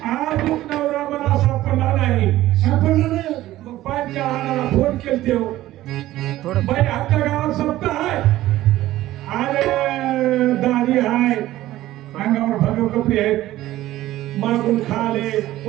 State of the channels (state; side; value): quieter; left; 15.2 dB